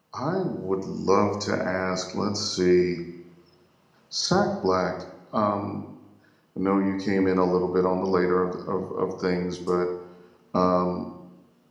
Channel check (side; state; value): both; identical; correlation 1.00